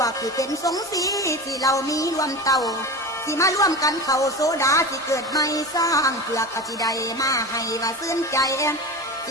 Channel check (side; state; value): both; normal; correlation 0.28